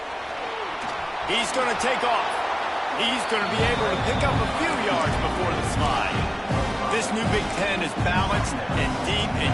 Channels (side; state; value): both; identical; correlation 1.00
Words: He's going to take off. He's going to be able to pick up a few yards before the slide. This new Big Ten is balanced and deep, and